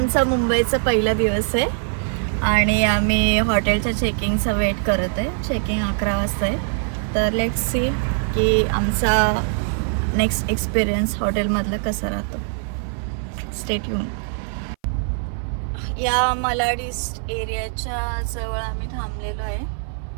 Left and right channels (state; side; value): silent; left; 58 dB below the other